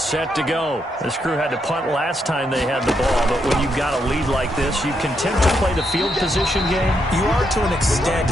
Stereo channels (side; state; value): both; normal; correlation 0.79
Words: set to go. This crew had to punt last time they had the ball, but when you've got a lead like this, you can tend to play the field position game. You are to an extent,